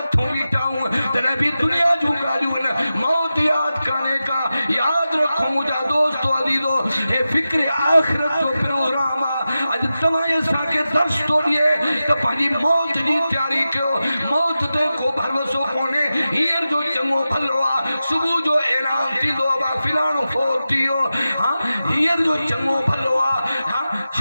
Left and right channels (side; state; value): both; inverted; correlation -0.93